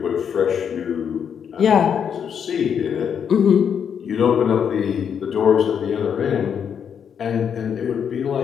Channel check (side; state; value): right; quieter; 7.7 dB